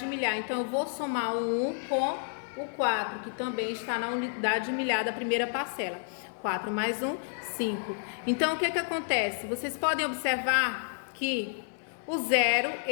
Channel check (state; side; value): silent; right; 58 dB below the other